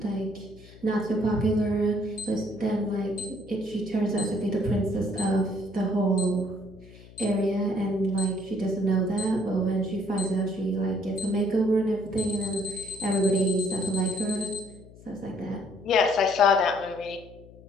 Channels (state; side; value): noise; left; hum, 21 dB below the sound